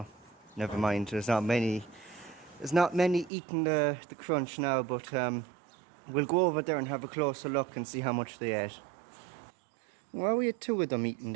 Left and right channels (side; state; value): left; drops out; at 3.3 s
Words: never mind. There's not many. There's not many eating the crunch now, but we'll go over there and have a closer look and see how much they ate. Well, we had two of them eating